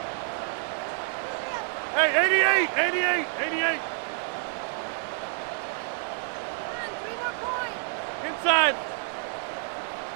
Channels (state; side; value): silent; left; 59 dB below the other